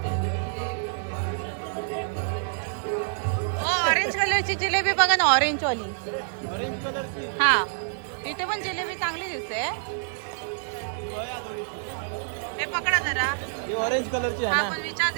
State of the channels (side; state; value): left; silent; digital silence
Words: ओ ऑरेंज कलरची जिलेबी बघा ना ऑरेंज वाली ऑरेंज कलरची हा इथे पण जिलेबी चांगली दिसते हे पकडा जरा ही ऑरेंज कलरची आहे हा ना पण